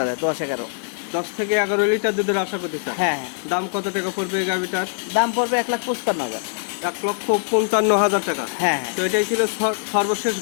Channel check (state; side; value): silent; right; digital silence